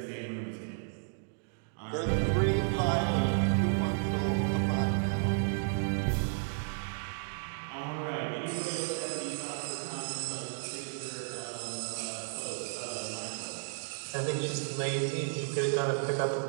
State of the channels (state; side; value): silent; left; digital silence